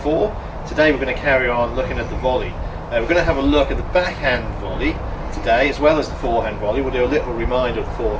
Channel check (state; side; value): identical; both; correlation 1.00